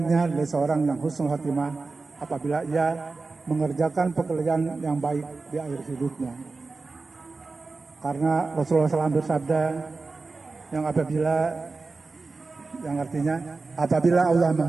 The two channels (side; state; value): left; quieter; 3.9 dB